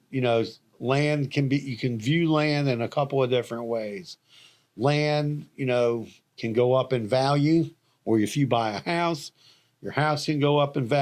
land you can view land in a couple of different ways. Land, can go up in value, or if you buy a house, your house can go up in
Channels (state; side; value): identical; both; correlation 1.00